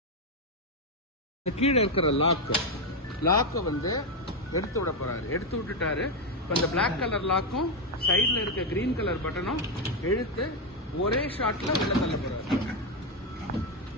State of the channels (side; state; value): both; normal; correlation 0.06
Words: கீழே இருக்கிற லாக்கை வந்து எடுத்து விட போறாரு. எடுத்து விட்டுட்டாரு. இப்போ இந்த பிளாக் கலர் லாக்கும் சைட்ல இருக்க கிரீன் கலர் பட்டனும் இழுத்து ஒரே ஷாட்ல உள்ள தள்ள போறாரு.